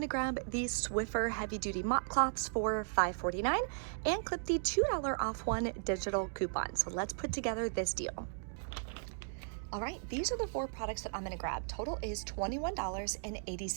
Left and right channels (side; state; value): left; silent; digital silence